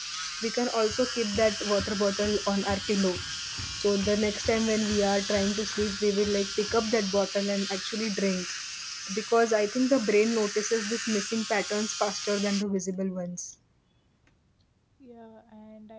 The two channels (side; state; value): both; identical; correlation 1.00